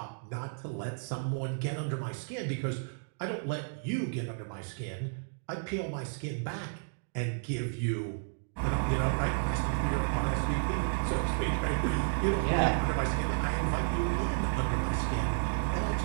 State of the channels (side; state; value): left; silent; digital silence